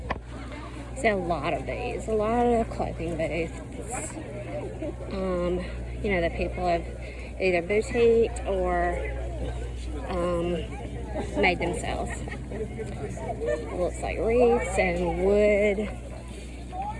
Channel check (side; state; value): both; identical; correlation 1.00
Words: See a lot of these, a lot of clothing booths. You know, that people have either boutiqued or made themselves. It looks like wreaths and wood